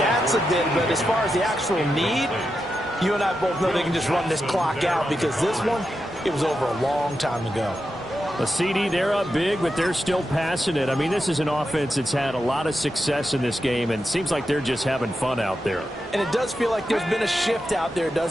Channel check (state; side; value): normal; both; correlation 0.88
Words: a bit. But as far as the actual need, you and I both know they can just run this clock out because this one, it was over a long time ago. A CD, they're up big, but they're still passing it. I mean, this is an offense that's had a lot of success in this game, and it seems like they're just having fun out there. And it does feel like there's been a shift out there,